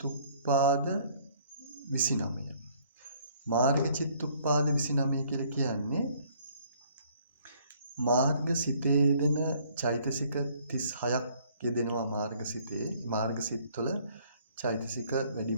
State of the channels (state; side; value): inverted; both; correlation -0.61